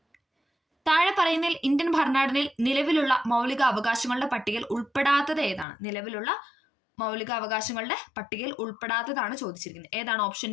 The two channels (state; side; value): drops out; right; at 5.7 s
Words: താഴെ പറയുന്നതിൽ ഇന്ത്യൻ ഭരണഘടനയിൽ നിലവിലുള്ള മൗലിക അവകാശങ്ങളുടെ പട്ടികയിൽ ഉൾപ്പെടാത്തത് ഏതാണ്? നിലവിലുള്ള മൗലിക അവകാശങ്ങളുടെ പട്ടികയിൽ ഉൾപ്പെടാത്തതാണ് ചോദിച്ചിരിക്കുന്നത്. ഏതാണ്? ഓപ്ഷൻ